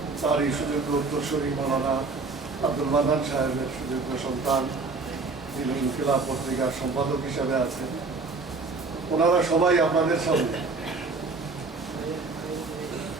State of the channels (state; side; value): quieter; left; 4.0 dB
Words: তারই সুযোগ্য উত্তরসূরি মৌলানা আব্দুল মান্নান সাহেবের সুযোগ্য সন্তান, যিনি ইনকিলাব পত্রিকার সম্পাদক হিসাবে আছেন। ওনারা সবাই আপনাদের সামনে